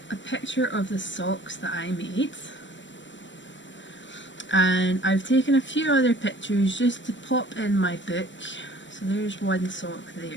a picture of the socks that I made. And I've taken a few other pictures just to pop in my book. So there's one sock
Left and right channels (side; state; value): right; late; 0.54 ms